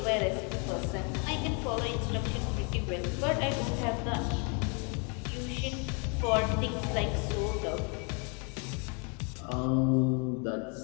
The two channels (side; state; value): right; quieter; 36.1 dB